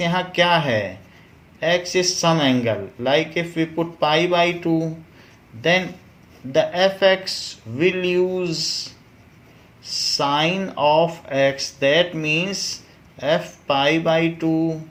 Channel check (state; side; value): identical; both; correlation 1.00